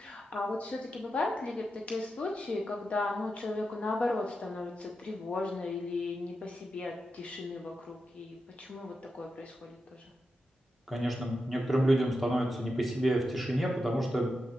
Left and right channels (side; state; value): both; normal; correlation 0.88